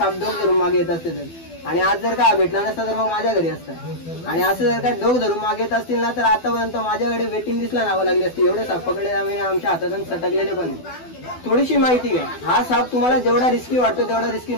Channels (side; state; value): right; late; 12 ms